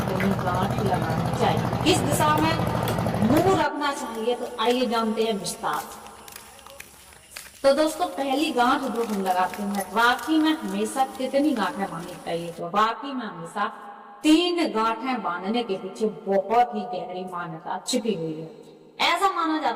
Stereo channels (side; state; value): both; identical; correlation 1.00